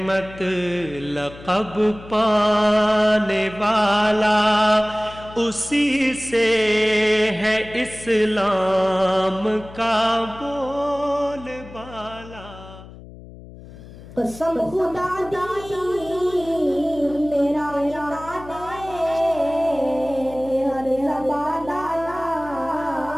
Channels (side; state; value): left; noise; hum, 17 dB below the sound